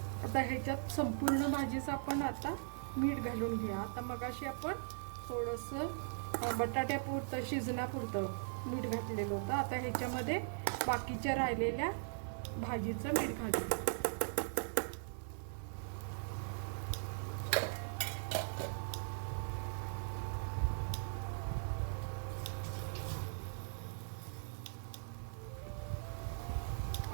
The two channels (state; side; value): silent; left; digital silence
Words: आता ह्याच्यात संपूर्ण भाजीचं आपण आता मीठ घालून घेऊया. आता मगाशी आपण थोडंसं बटाट्यापुरतं शिजण्यापुरतं मीठ घातलेलं होतं. आता ह्याच्यामध्ये बाकीच्या राहिलेल्या भाजीचं मीठ घालूया.